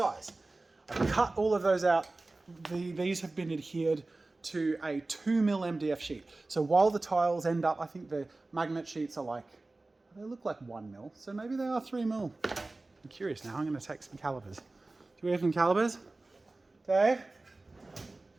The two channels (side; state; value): left; quieter; 3.1 dB